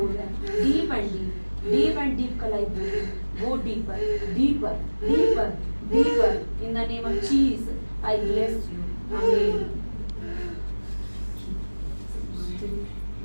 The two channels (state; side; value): inverted; both; correlation -1.00